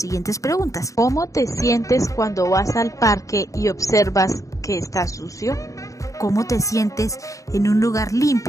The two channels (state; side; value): late; right; 0.16 ms